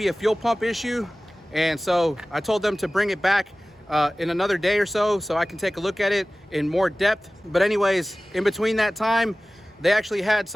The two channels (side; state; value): both; normal; correlation 0.97